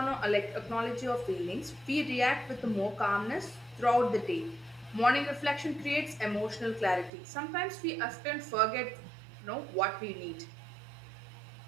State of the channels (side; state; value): left; drops out; at 7.1 s